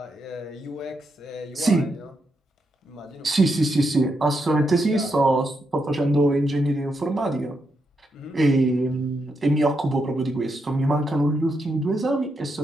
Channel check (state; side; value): normal; both; correlation 0.82